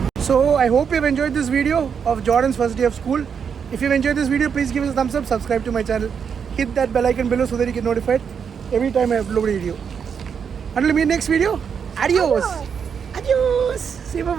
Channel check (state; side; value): quieter; left; 6.9 dB